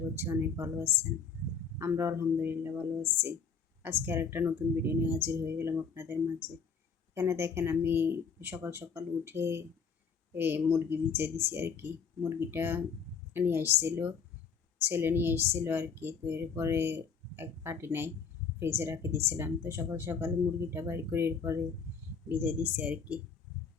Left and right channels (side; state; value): right; quieter; 5.9 dB